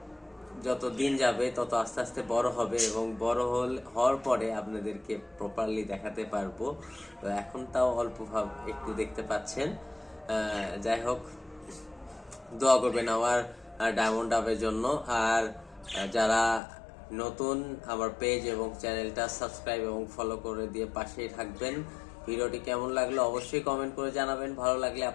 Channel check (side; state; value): right; drops out; at 16.6 s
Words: যত দিন যাবে তত আস্তে আস্তে বড় হবে এবং বড় হওয়ার পরে আপনাদেরকে প্রপারলি দেখাতে পারবো। তো এখন তাও অল্প ভাব একটু দেখতে পাচ্ছেন। যাই হোক, দোয়া করবেন আমার ডায়মন্ড ডাবের জন্য। আর যারা নতুন, আমার পেজ এবং চ্যানেলটা সাবস্ক্রাইব এবং ফলো করে দিয়ে পাশেই থাকবেন। ভিডিওটি কেমন লাগলো অবশ্যই কমেন্ট করে জানাবেন। ভালো লাগলে